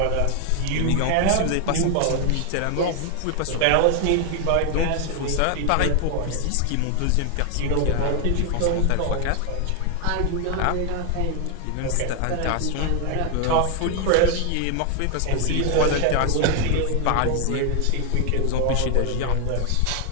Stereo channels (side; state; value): both; different; correlation 0.00